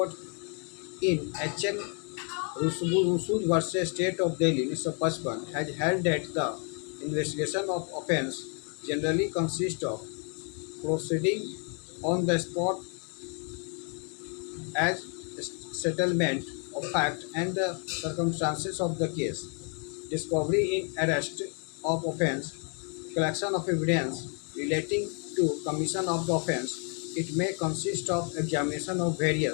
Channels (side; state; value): right; quieter; 38.9 dB